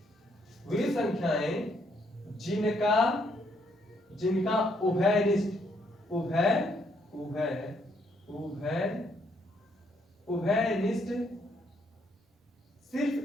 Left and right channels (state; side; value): normal; both; correlation 0.71